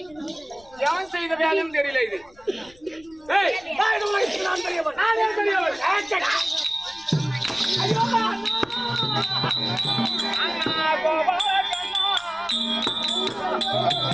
எவன் செய்த வேலையும் தெரியல. இது நான் பெரியவன்.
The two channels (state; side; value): noise; left; rumble, 27 dB below the sound